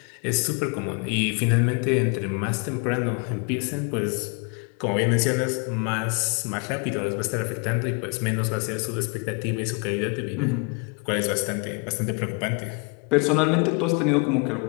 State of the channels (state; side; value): quieter; right; 32.7 dB